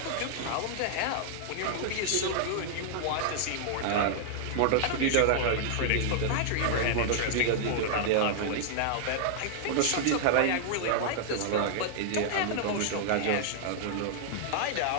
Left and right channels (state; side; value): different; both; correlation -0.01